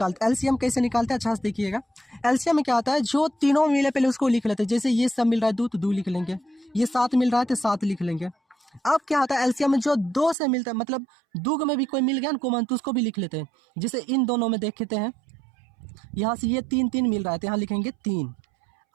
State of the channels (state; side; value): drops out; left; at 10.4 s